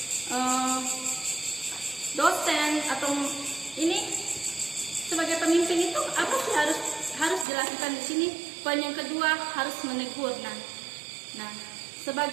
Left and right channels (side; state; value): left; drops out; at 7.5 s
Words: dosen, atau ini sebagai pemimpin itu apa sih harus dilakukan di sini? Poin yang kedua, harus menegur. Nah,